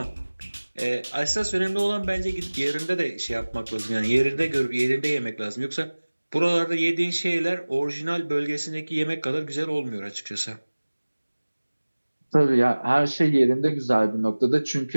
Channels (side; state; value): both; inverted; correlation -1.00